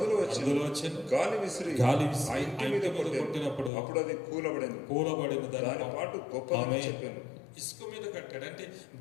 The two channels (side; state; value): right; drops out; at 3.7 s